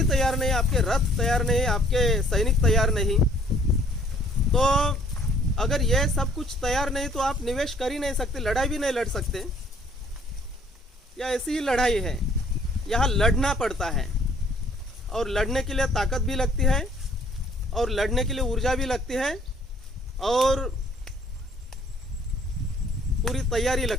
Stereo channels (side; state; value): both; normal; correlation 0.60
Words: तैयार नहीं, आपके रथ तैयार नहीं, आपके सैनिक तैयार नहीं, तो अगर ये सब कुछ तैयार नहीं तो आप निवेश कर ही नहीं सकते, लड़ाई भी नहीं लड़ सकते। या ऐसी ही लड़ाई है, यहाँ लड़ना पड़ता है और लड़ने के लिए ताकत भी लगती है और लड़ने के लिए ऊर्जा भी लगती है और पूरी तैयारी